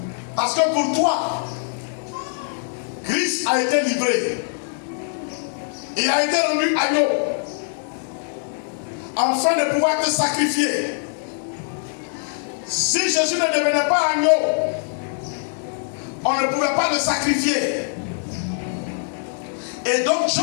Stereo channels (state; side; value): silent; right; digital silence